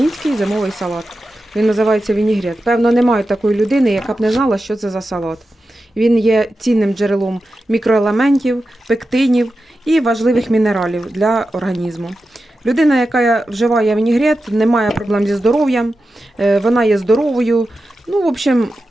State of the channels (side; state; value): both; normal; correlation 0.91